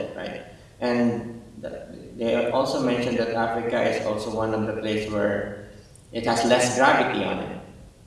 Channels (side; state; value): both; identical; correlation 1.00